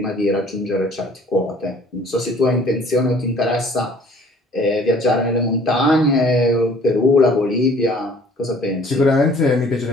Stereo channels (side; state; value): both; normal; correlation 0.54